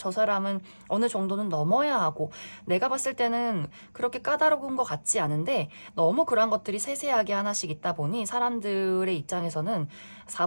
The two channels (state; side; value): inverted; both; correlation -1.00